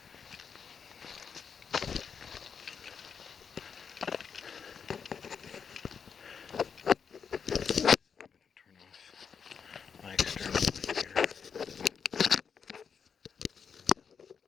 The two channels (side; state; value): right; quieter; 6.5 dB